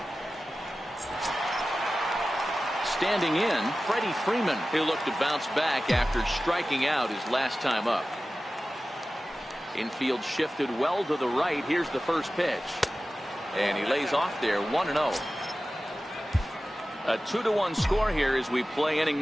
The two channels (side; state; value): both; normal; correlation 0.95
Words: Standing in, Freddie Freeman. He'll look to bounce back after striking out his last time up. Infield shifted well to the right. Here's the first pitch. And he lays off there, 1-0. A 2-1 score here as we play inning